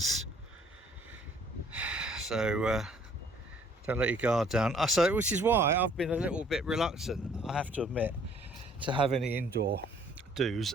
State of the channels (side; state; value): both; normal; correlation 0.59